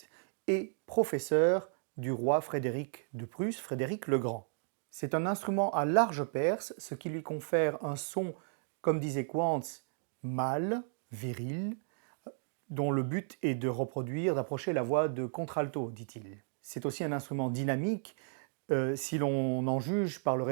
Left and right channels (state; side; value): silent; left; 55 dB below the other